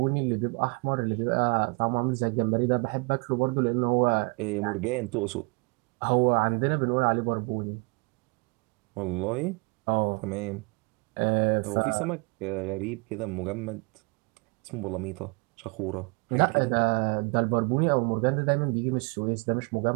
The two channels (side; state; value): left; quieter; 31.6 dB